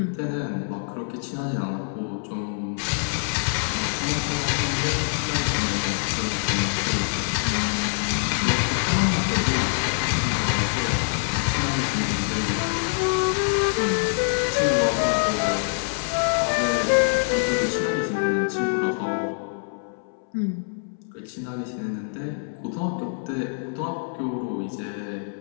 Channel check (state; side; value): silent; right; 62 dB below the other